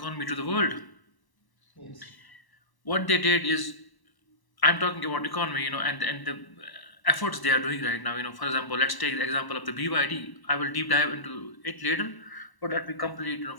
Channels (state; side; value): late; right; 1.0 ms